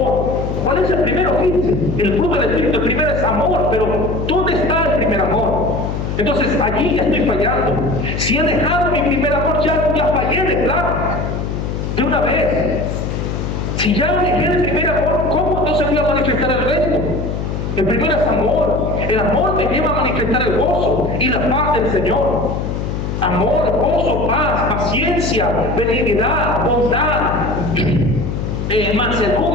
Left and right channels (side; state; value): left; noise; hum, 3 dB below the sound